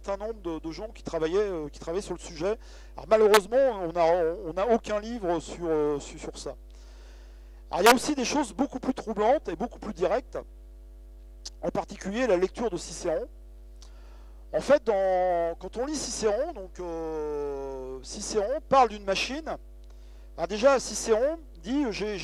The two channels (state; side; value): identical; both; correlation 1.00